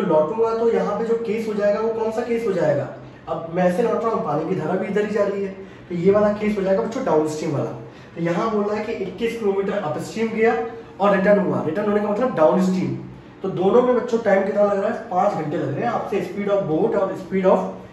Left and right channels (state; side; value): identical; both; correlation 1.00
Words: लौटूंगा तो यहाँ पे जो केस हो जाएगा वो कौन सा केस हो जाएगा, अब मैं ऐसे लौट रहा हूँ, पानी की धारा भी इधर ही जा रही है, तो ये वाला केस हो जाएगा बच्चों डाउन स्ट्रीम वाला। तो यहाँ बोल रहा है कि 21 किलोमीटर अपस्ट्रीम गया और रिटर्न हुआ, रिटर्न होने का मतलब डाउन स्ट्रीम। तो दोनों में बच्चों टाइम कितना लग रहा है, 5 घंटे लग रहे हैं। आपसे स्पीड ऑफ बोट और स्पीड